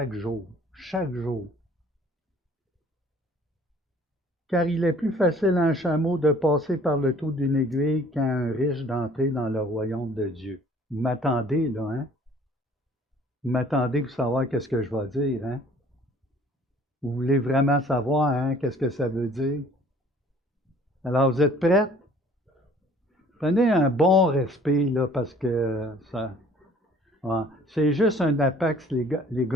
jour. Chaque jour. Car il est plus facile à un chameau de passer par le trou d'une aiguille qu'à un riche d'entrer dans le royaume de Dieu. Vous m'attendez, là, hein? Vous m'attendez pour savoir qu'est-ce que je vais dire, hein? Vous voulez vraiment savoir, hein, qu'est-ce que ça veut dire? Alors, vous êtes prêts? Prenez un bon respect, là, parce que ça... Ouais, c'est juste un apax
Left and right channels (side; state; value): both; normal; correlation 0.54